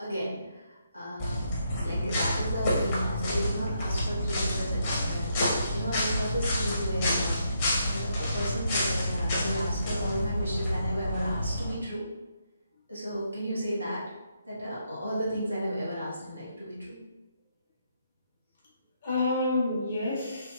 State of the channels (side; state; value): both; inverted; correlation -0.76